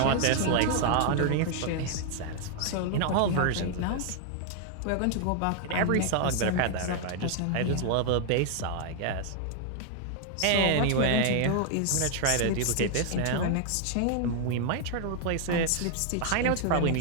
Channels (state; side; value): different; both; correlation 0.00